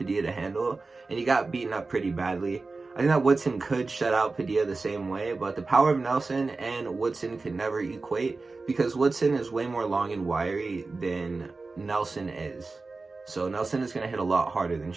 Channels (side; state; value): left; quieter; 3.8 dB